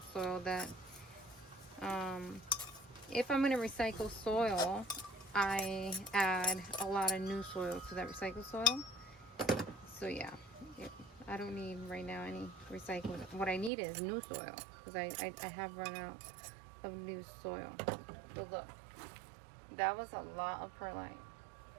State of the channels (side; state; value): left; drops out; at 13.7 s